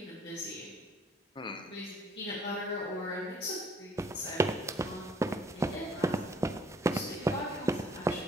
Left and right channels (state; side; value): normal; both; correlation 0.59